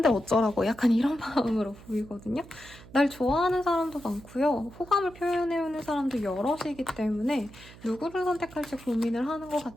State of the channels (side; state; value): right; noise; hum, 19 dB below the sound